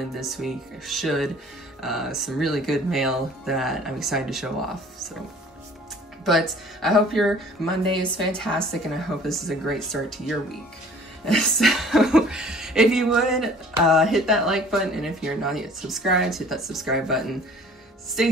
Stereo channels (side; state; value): both; normal; correlation 0.51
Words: this week. I should. Some really good mail that I'm excited to show off. So. But I hope your Monday is fantastic, and I hope this is a great start to your week. So if you would, hit that like button, and if you're not yet subscribed, hit that subscribe button. Stay